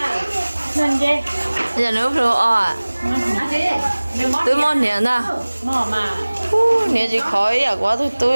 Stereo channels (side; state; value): both; inverted; correlation -1.00